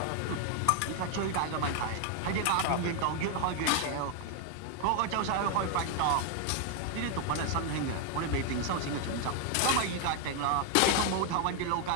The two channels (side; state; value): both; different; correlation 0.01